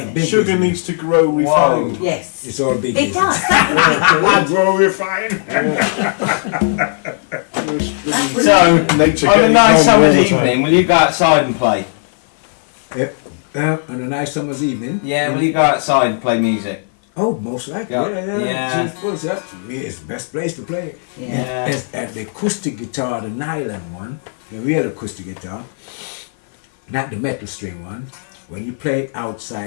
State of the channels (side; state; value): right; silent; 56 dB below the other